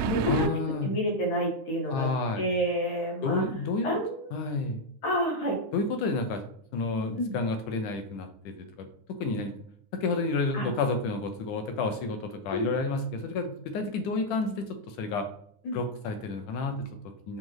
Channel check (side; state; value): right; late; 10 ms